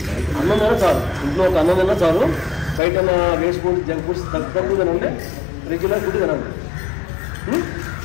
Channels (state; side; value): drops out; right; at 2.8 s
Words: అన్నం తిన్నా చాలు, ఇంట్లో ఒక అన్నం తిన్నా చాలు. బయట వేస్ట్ ఫుడ్ జంక్ ఫుడ్స్ తక్కువ తినండి, రెగ్యులర్ ఫుడ్ తినండి.